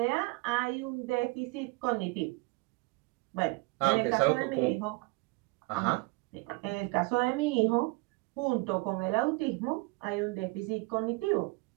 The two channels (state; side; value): quieter; left; 26.2 dB